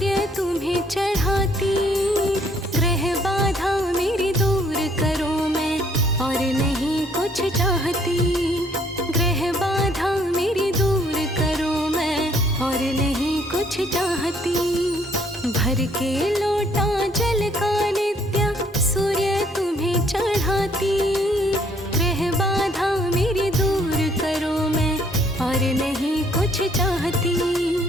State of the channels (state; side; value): normal; both; correlation 0.64